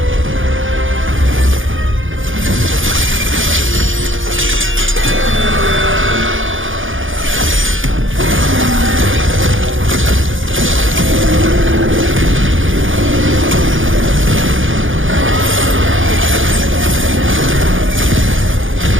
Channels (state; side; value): late; left; 0.58 ms